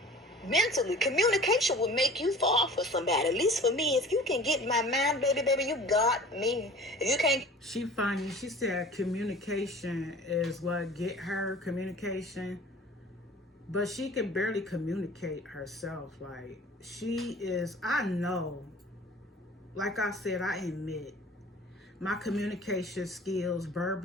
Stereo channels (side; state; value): both; normal; correlation 0.44